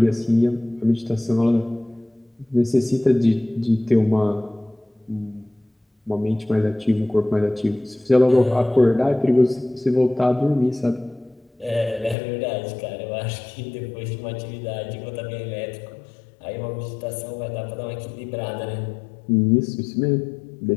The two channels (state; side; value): drops out; right; at 12.2 s